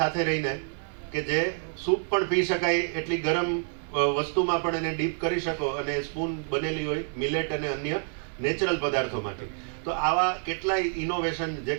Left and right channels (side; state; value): left; silent; 59 dB below the other